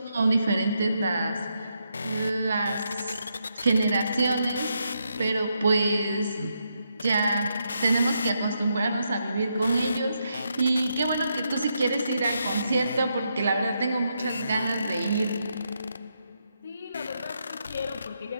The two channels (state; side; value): inverted; both; correlation -0.81